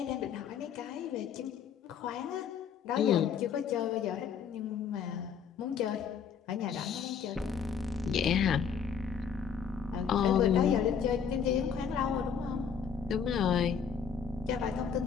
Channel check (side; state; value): right; quieter; 7.0 dB